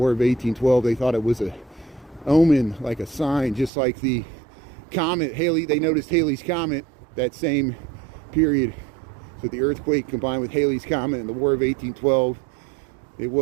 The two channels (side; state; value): left; drops out; at 3.7 s